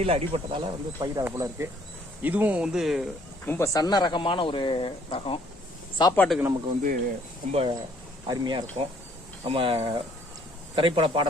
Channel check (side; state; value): both; normal; correlation 0.63